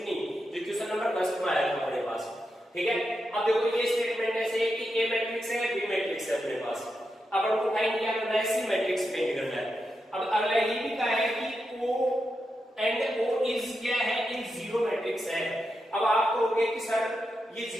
नहीं, जो क्वेश्चन नंबर 10 में आया था अपने पास, ठीक है। अब देखो ये स्टेटमेंट ऐसे है कि A मैट्रिक्स है, B मैट्रिक्स है अपने पास, अब अपन को फाइंड क्या करना है, C मैट्रिक्स फाइंड करना है। अब अगला ये भी कहा है कि O एंड O इज क्या है, इन 0 मैट्रिक्स है। अब आप कहोगे कि सर ये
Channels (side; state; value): both; normal; correlation 0.87